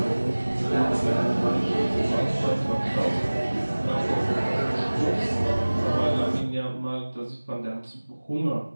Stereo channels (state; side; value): inverted; both; correlation -1.00